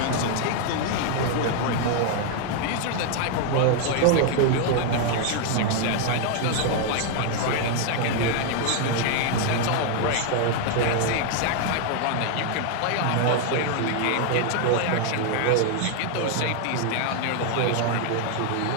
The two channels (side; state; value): both; different; correlation 0.00